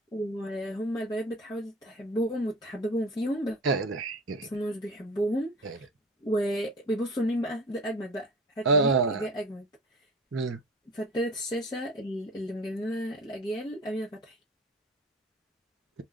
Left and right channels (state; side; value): normal; both; correlation 0.37